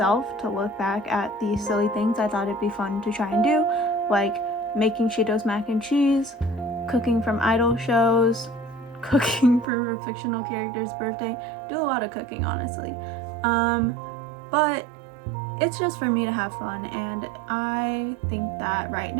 to look back at the silly things I thought it'd be fun to try and do, like making Cheetos mac and cheese, cooking from idol shows, cooking for a fictional character's birthday. Do a lot of cooking, honestly. But it's just for me to have fun, and I think that right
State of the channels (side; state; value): left; drops out; at 9.7 s